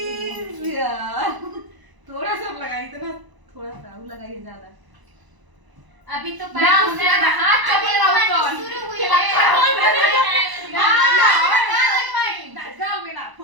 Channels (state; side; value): late; left; 1.0 ms